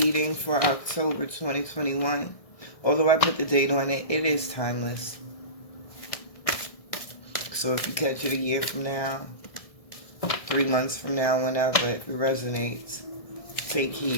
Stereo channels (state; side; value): late; right; 1.6 ms